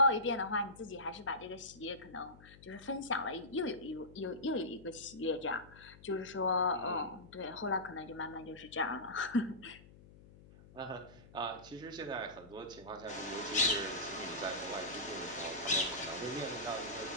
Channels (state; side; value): noise; left; hum, 21 dB below the sound